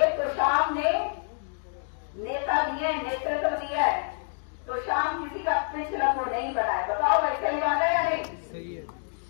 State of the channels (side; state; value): right; silent; digital silence